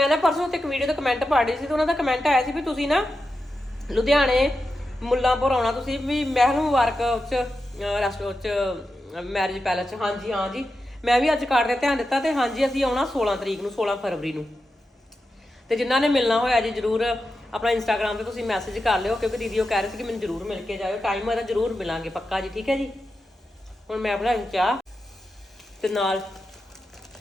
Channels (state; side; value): normal; both; correlation 0.90